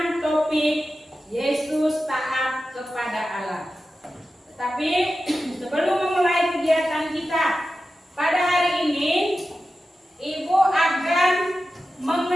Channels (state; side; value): normal; both; correlation 0.93